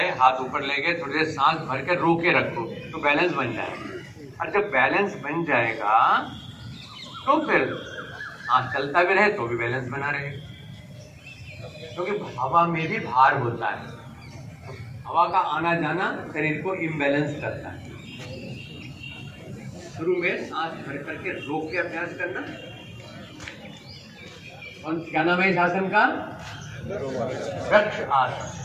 हाथ ऊपर ले गए, थोड़ी देर सांस भर के रोके रखो तो बैलेंस बन जाएगा। और जब बैलेंस बन जाएगा तो फिर सांस चलता भी रहे तो भी बैलेंस बना रहेगा, क्योंकि हवा में भी भार होता है। हवा का आना जाना शरीर को इम्बैलेंस करता है। शुरू में सांस भर करके रोक के अभ्यास करना। और क्या नाम है इस आसन का? वृक्ष आसन।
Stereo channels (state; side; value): identical; both; correlation 1.00